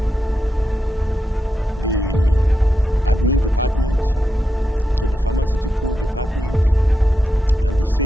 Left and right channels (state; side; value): normal; both; correlation 0.87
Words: the admin department to the pharmaceutical department, and the